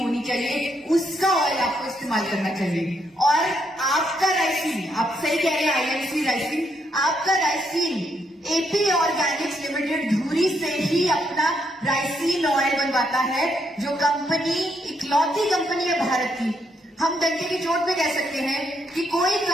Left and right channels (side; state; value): both; normal; correlation 0.76